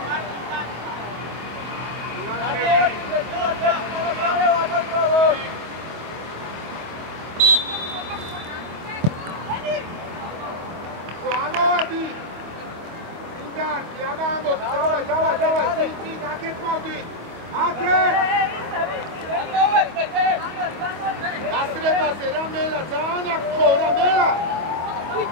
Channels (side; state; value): left; late; 25 ms